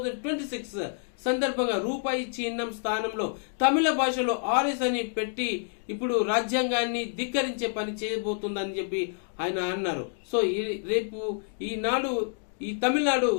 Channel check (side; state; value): right; silent; 59 dB below the other